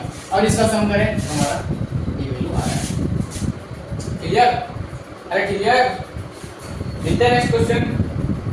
और इसका सम करें तो हमारा ये वैल्यू आ रहा है। क्लियर? अरे क्लियर? मिलते हैं नेक्स्ट क्वेश्चन।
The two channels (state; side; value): identical; both; correlation 1.00